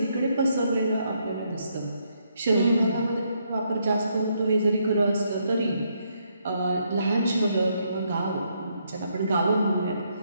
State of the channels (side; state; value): both; inverted; correlation -0.75